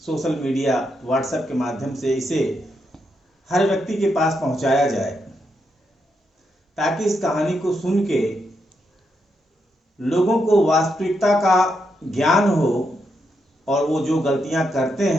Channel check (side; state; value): both; normal; correlation 0.81